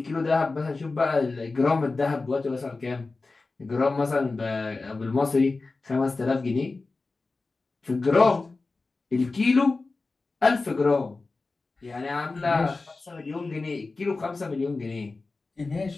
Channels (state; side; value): quieter; right; 3.7 dB